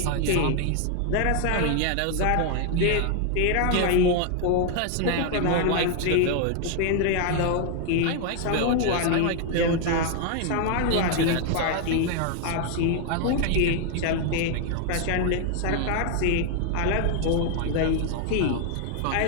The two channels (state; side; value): different; both; correlation 0.00